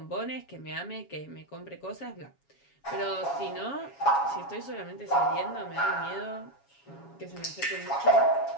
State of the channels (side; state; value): right; late; 7.2 ms